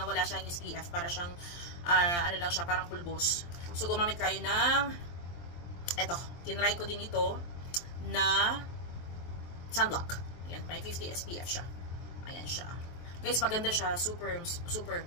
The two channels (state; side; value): late; right; 23 ms